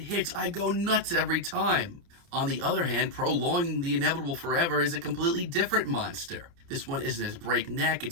I go nuts every time. On the other hand, Prolonging the Inevitable Forever is a completely different monster. This one isn't as breakneck,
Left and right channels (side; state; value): left; late; 29 ms